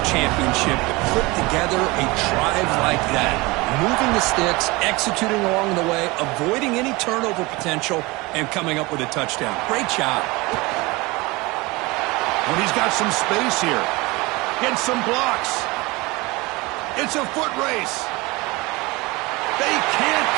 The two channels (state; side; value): quieter; left; 23.5 dB